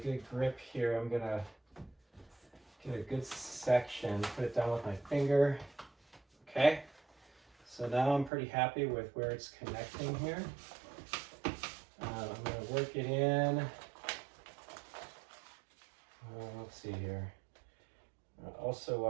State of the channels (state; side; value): drops out; left; at 8.3 s